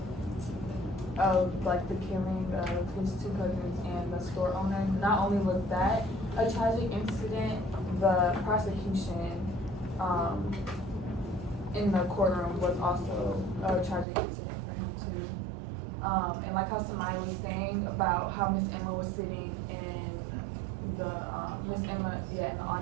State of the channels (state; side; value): drops out; left; at 14.1 s